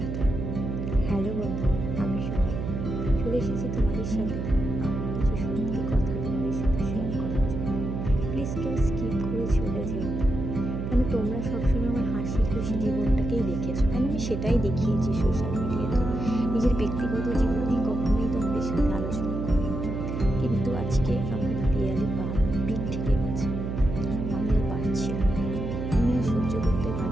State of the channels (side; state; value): right; noise; hum, 4 dB below the sound